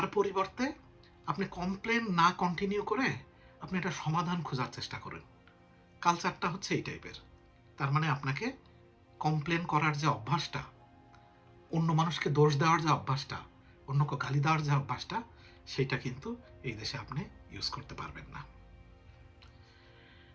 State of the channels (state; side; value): identical; both; correlation 1.00